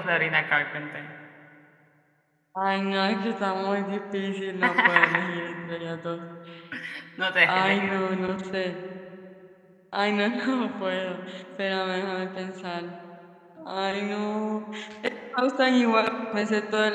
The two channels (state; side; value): identical; both; correlation 1.00